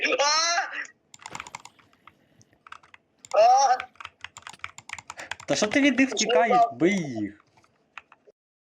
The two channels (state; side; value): identical; both; correlation 1.00